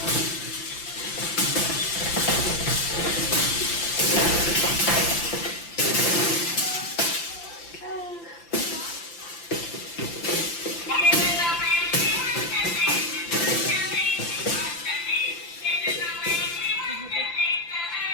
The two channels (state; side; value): late; right; 5.9 ms